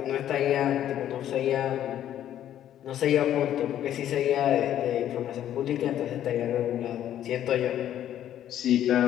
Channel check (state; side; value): quieter; right; 11.3 dB